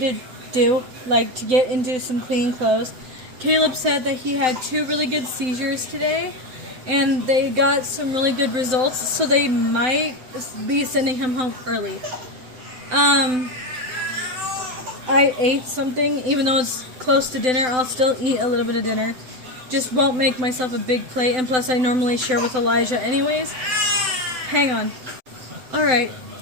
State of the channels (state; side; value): late; left; 7.8 ms